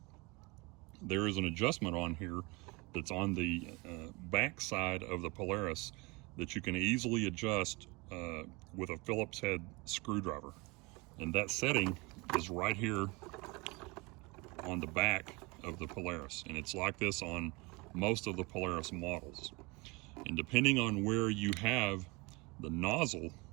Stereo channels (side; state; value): left; quieter; 26.2 dB